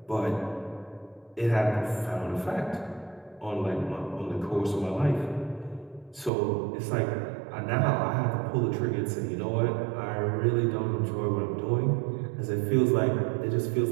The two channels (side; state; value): left; drops out; at 6.3 s